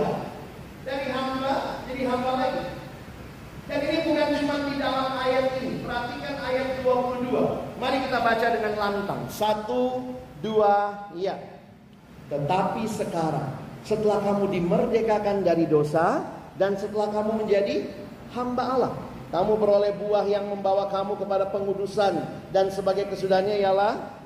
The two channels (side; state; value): both; identical; correlation 1.00